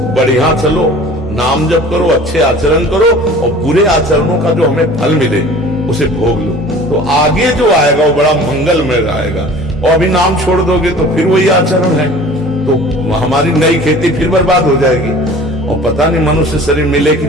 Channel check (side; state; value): both; normal; correlation 0.44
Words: बढ़िया चलो, नाम जप करो, अच्छे आचरण करो, और बुरे आचरणों का जो हमें फल मिले उसे भोग लो, तो आगे जो आएगा वो बड़ा मंगलमय आएगा। और अभी नाम छोड़ दोगे तो फिर वही आचरण है, तो हमारी नई खेती फिर बर्बाद हो जाएगी। और पता नहीं मनुष्य शरीर मिले कि